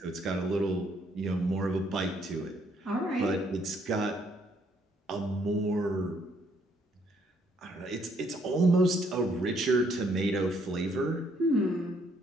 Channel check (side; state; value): both; normal; correlation 0.68